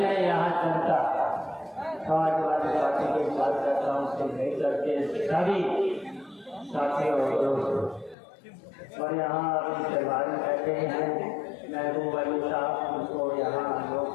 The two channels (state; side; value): drops out; right; at 8.2 s